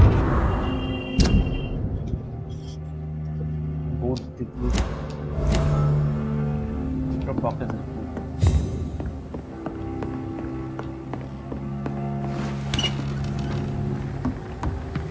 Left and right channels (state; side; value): identical; both; correlation 1.00